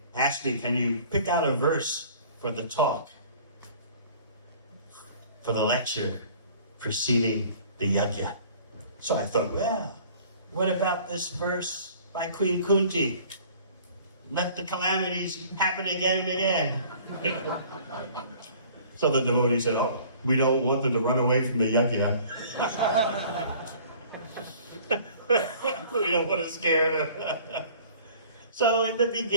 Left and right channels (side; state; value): both; inverted; correlation -0.50